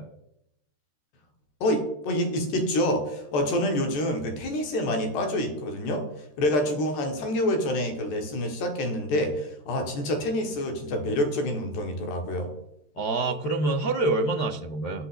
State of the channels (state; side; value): late; right; 13 ms